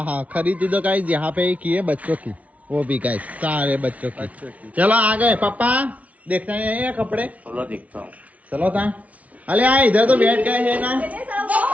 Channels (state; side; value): late; left; 0.069 ms